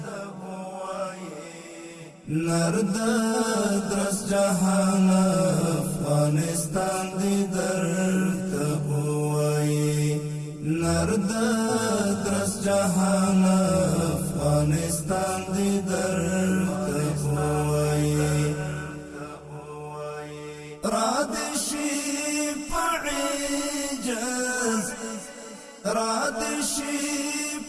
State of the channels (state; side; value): identical; both; correlation 1.00